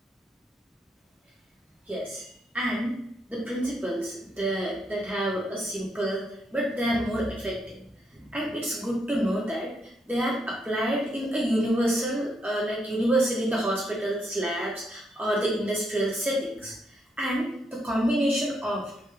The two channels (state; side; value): normal; both; correlation 0.77